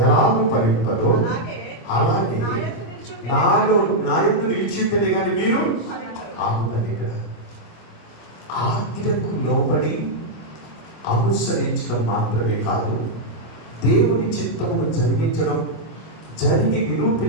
ఎలాగూ ఫలింపదో అలాగే నాలో నా యందు నిలిచి ఉంటేనే కానీ మీరు ఆగుతారు. ఇక్కడ ఆజ్ఞకు లోబడి అనుసరించడం మాత్రమే కాదు, దేవుని చిత్తమును జరిగి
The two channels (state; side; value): late; right; 26 ms